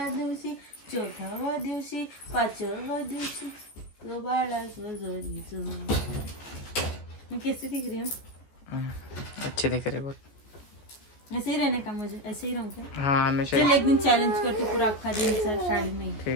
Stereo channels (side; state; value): right; late; 14 ms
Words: 4व्या दिवशी 5व्या दिवशी तो बाळा जो जरी जो. मैं कैसी दिख रही हूँ. अच्छी दिख रही बहुत. ऐसे ही रहने का मुझे. ऐसे ही रहूँ क्या. हाँ हमेशा. चल एक दिन चैलेंज करती पूरा अक्खा दिन साड़ी में.